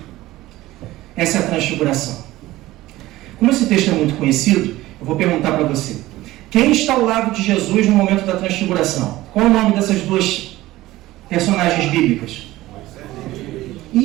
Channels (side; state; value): left; quieter; 17.0 dB